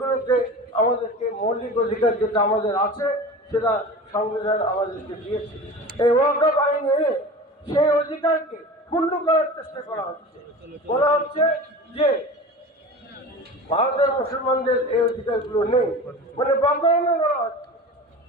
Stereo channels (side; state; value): both; normal; correlation 0.34